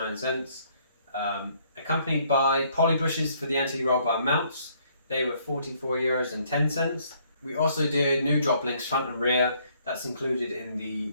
Accompanied by poly bushes for the anti-roll bar mounts. They were €44.10. We also did new drop links front and rear. That's included in the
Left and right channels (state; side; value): inverted; both; correlation -0.66